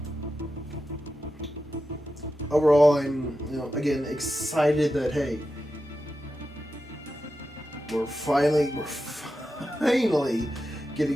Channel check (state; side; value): normal; both; correlation 0.90